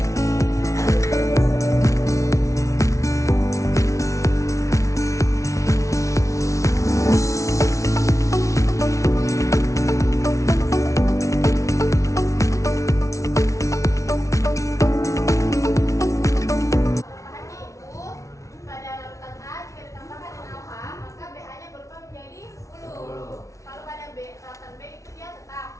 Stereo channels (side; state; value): right; late; 0.15 ms